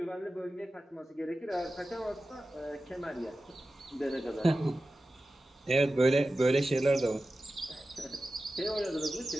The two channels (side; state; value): both; normal; correlation 0.94